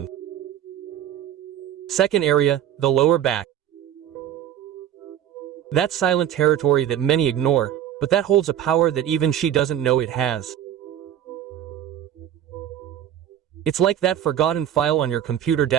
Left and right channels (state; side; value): quieter; left; 10.6 dB